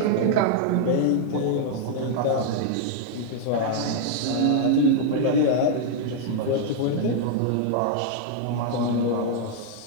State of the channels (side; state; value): both; different; correlation -0.01